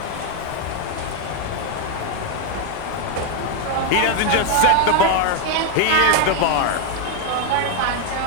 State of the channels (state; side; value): different; both; correlation 0.01